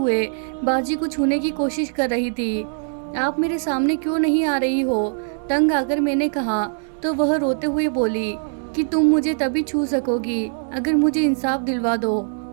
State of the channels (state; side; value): silent; left; digital silence